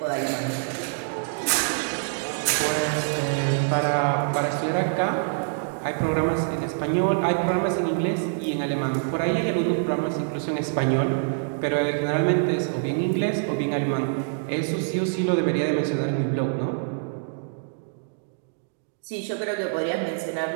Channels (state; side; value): silent; left; digital silence